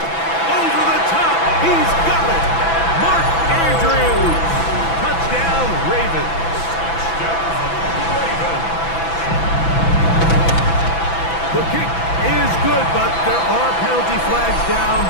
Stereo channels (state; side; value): late; right; 6.0 ms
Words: the top. He's got it. Mark Andrews. Touchdown, Ravens. The kick is good, but there are penalty flags down.